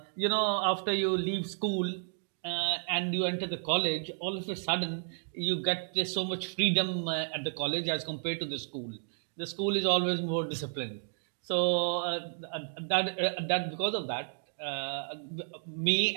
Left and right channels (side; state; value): left; silent; digital silence